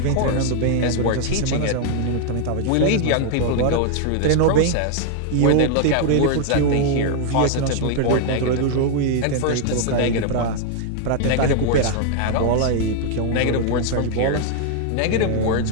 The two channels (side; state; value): both; different; correlation 0.00